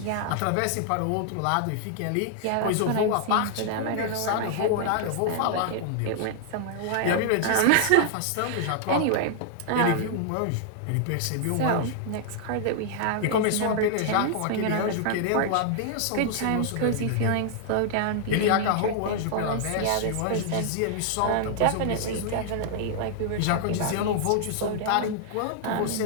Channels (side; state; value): both; different; correlation -0.01